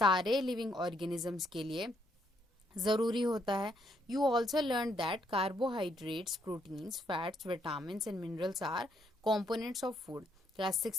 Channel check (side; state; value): both; normal; correlation 0.73